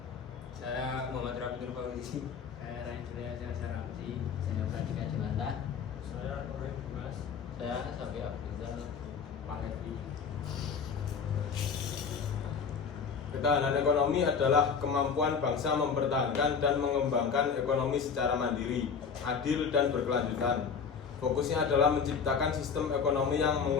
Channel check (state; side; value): quieter; right; 6.2 dB